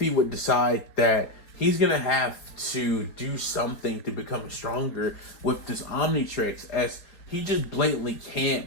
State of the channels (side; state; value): right; late; 4.4 ms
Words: would decide that he's going to have to do something to become stronger with this Omnitrix, as he just blatantly